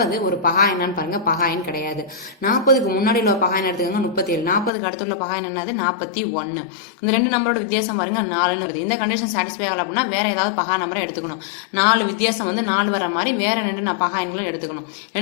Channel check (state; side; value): drops out; right; at 4.7 s